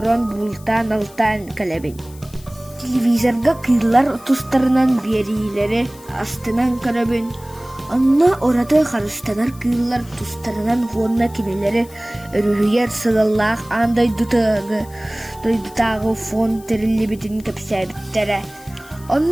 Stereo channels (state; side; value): noise; left; hiss, 22 dB below the sound